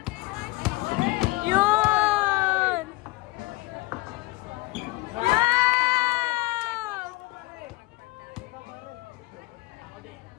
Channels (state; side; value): quieter; right; 20.3 dB